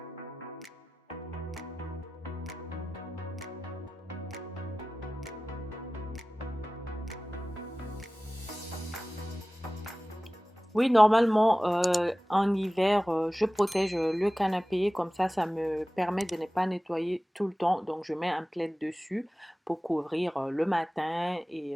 Oui, normalement, en hiver, je protège le canapé, comme ça me permet de ne pas nettoyer tout le temps. Donc, je mets un plaid dessus pour couvrir le matin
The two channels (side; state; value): both; normal; correlation 0.96